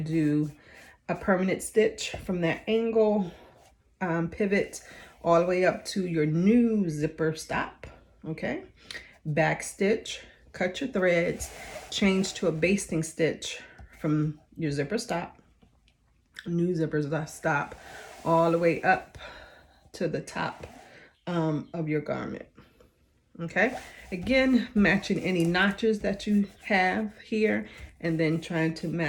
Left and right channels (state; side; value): identical; both; correlation 1.00